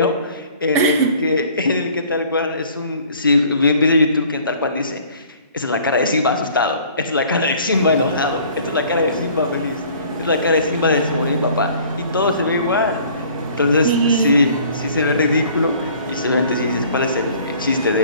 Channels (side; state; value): both; inverted; correlation -0.53